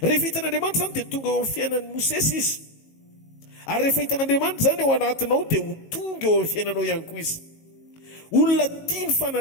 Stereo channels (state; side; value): late; right; 19 ms